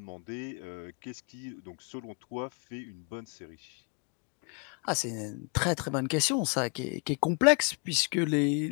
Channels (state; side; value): quieter; right; 36.9 dB